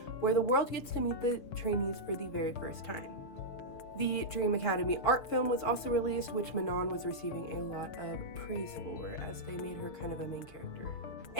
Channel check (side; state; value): right; late; 6.6 ms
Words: where the world gets to meet the trainees for the very first time. The Dream Academy art film was also released, which Manon was receiving a lot of praise for as they made her kind of a main character.